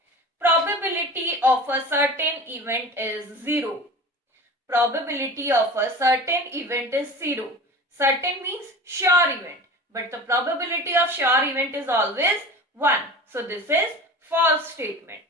Probability of a certain event is 0. Probability of a certain event is 0. Certain means sure event. But the probability of sure event is always 1. So, this is false statement.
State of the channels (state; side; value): normal; both; correlation 0.35